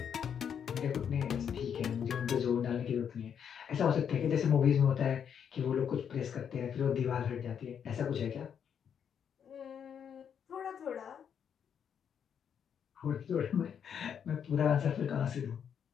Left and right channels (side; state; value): right; quieter; 8.0 dB